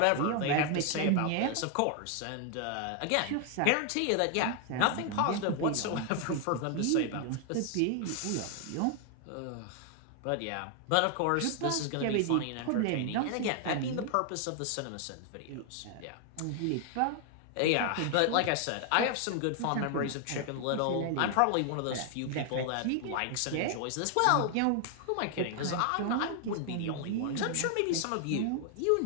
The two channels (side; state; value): both; different; correlation 0.00